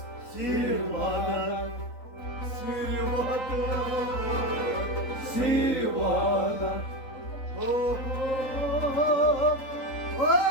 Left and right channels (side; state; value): right; late; 3.8 ms